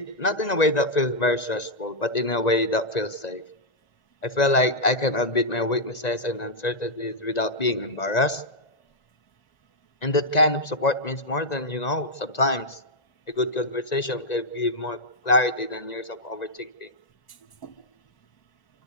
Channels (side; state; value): right; late; 1.9 ms